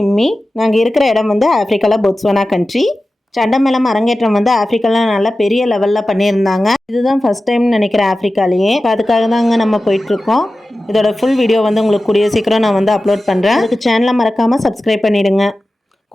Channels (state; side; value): normal; both; correlation 0.95